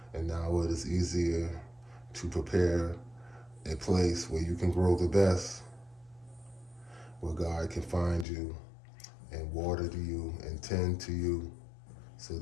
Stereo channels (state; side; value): drops out; right; at 8.2 s